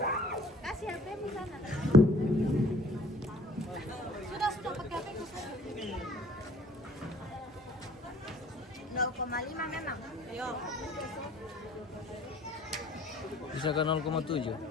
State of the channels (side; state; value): both; normal; correlation 0.53